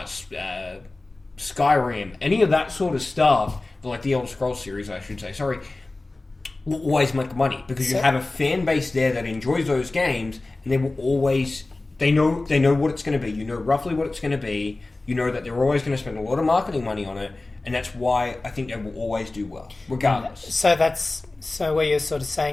Skyrim, any of that sort of stuff, like the Elder Scrolls series, I should say, will always make money, because you have a fan base there that enjoys those games, and they will always, they know what it's going to be. You know roughly what it's going to be. You know that they're always going to spend a lot of marketing money on it, and that's why I think they will always do well, regardless. So what you're sort of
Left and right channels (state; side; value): quieter; right; 3.1 dB